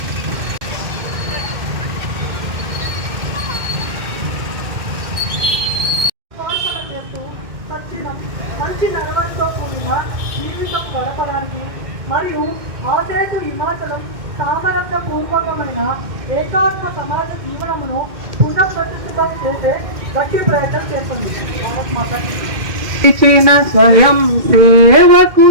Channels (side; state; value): left; late; 2.1 ms